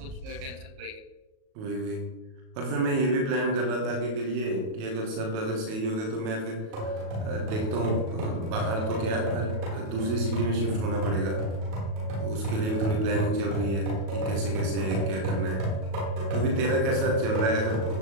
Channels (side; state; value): left; late; 37 ms